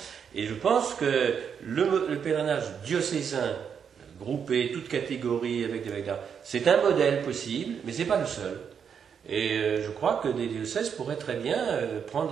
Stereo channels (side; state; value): left; quieter; 7.3 dB